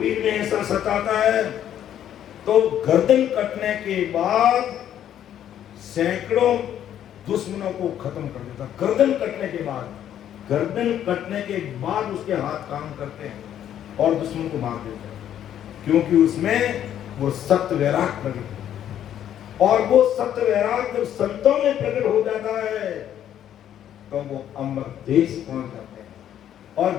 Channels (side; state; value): right; quieter; 10.6 dB